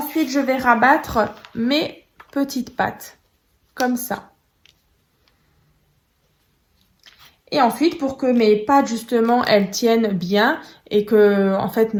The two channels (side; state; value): both; identical; correlation 1.00